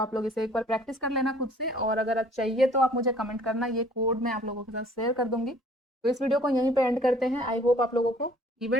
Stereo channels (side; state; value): both; normal; correlation 0.55